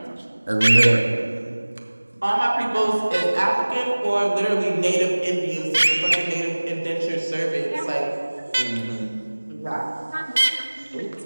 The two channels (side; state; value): both; inverted; correlation -1.00